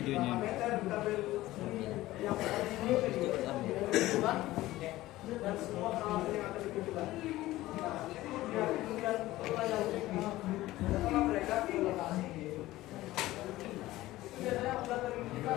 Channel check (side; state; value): right; quieter; 16.8 dB